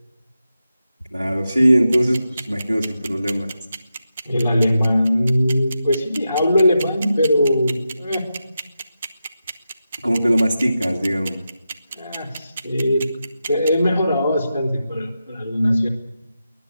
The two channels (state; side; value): inverted; both; correlation -0.89